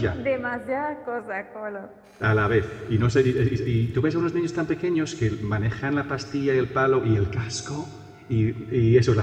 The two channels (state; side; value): identical; both; correlation 1.00